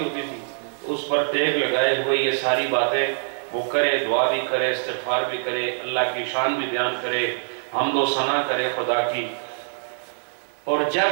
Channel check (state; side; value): silent; left; digital silence